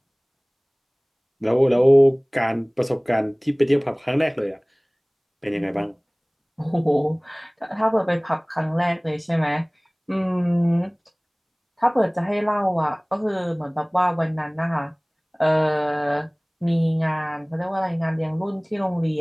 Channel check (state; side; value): identical; both; correlation 1.00